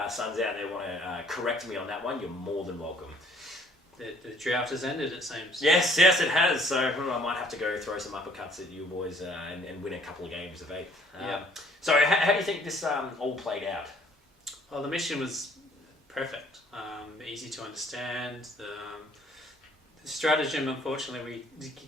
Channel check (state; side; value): normal; both; correlation 0.60